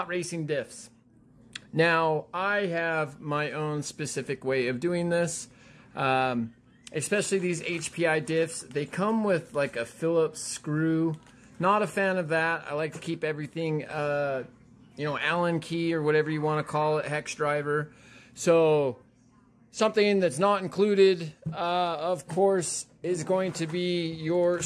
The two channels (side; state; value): both; identical; correlation 1.00